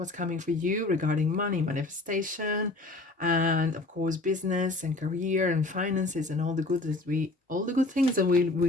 coming for you regarding money, manifestation, and of course business and career and finances and all the good things that we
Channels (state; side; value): quieter; right; 3.0 dB